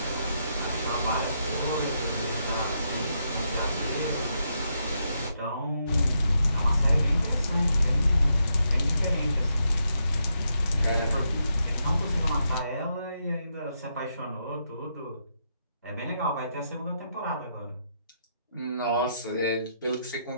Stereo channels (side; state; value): both; inverted; correlation -0.80